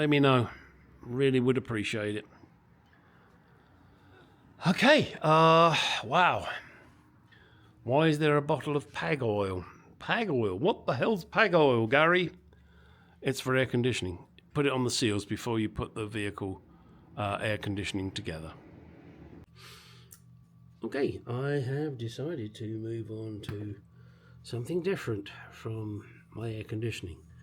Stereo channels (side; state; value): both; identical; correlation 1.00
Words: me know. Really would appreciate it. Okay, wow. Why is there a bottle of Pag oil? Pag oil? What the hell's Pag oil, Gary? It's for air conditioning. Put it on the seals before you put the vehicle air conditioning together. Okay, I have decided to move on to something different from my air conditioning,